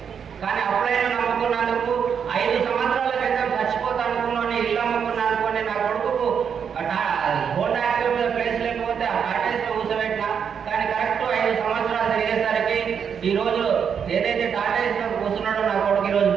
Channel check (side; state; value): left; quieter; 7.3 dB